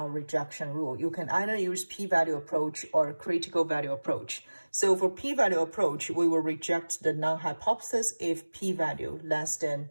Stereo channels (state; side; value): inverted; both; correlation -1.00